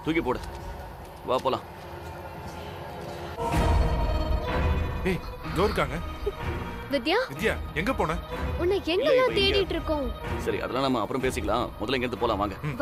தூக்கி போடு. வா போலாம். ஏய், இதோ இருக்காங்க. வித்யா வித்யா எங்க போன? உன்னை எங்கெல்லாம் தேடிட்டு இருக்கோம். சரி அதெல்லாம் நம்ம அப்புறம் பேசிக்கலாம். முதல்ல இங்க இருந்து போலாம் வாங்க.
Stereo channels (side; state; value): both; identical; correlation 1.00